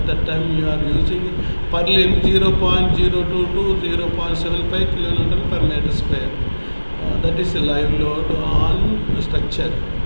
that time you are using purlin 0.02 to 0.75 kN per meter square. That is a live load on structure,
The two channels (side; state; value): both; inverted; correlation -1.00